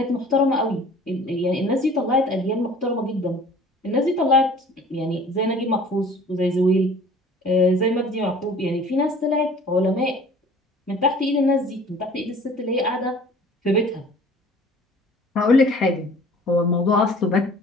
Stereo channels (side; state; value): both; normal; correlation 0.48